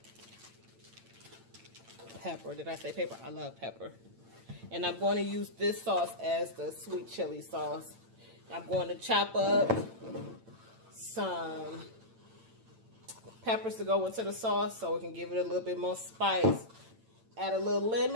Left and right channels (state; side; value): late; left; 8.9 ms